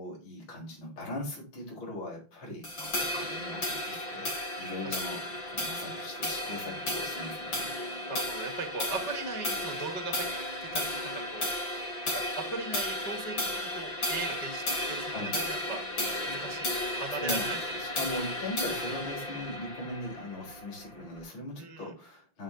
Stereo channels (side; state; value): right; late; 5.8 ms